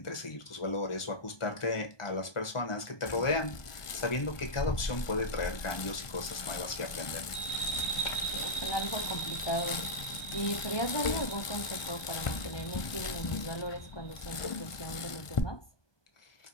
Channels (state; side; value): late; right; 1.4 ms